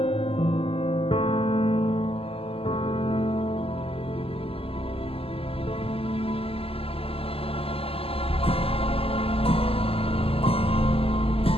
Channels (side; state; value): right; late; 0.28 ms